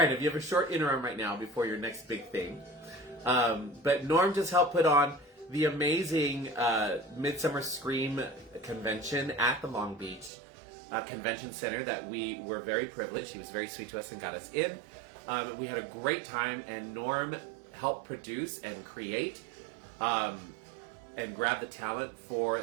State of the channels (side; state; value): left; drops out; at 10.3 s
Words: have a short interim right now before your next big thing. But Norm just helped put on the amazing Midsummer Scream convention at the Long Beach Convention Center that we were very privileged. He was very sweet to us and got us in. We had a great time, and Norm helped produce and create and grab the talent for